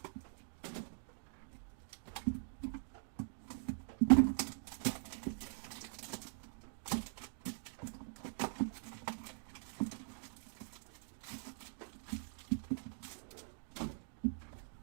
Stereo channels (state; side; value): silent; left; digital silence